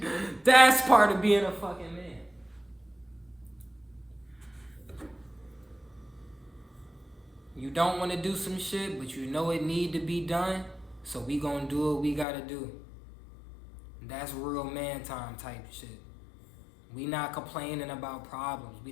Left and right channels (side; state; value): right; drops out; at 12.2 s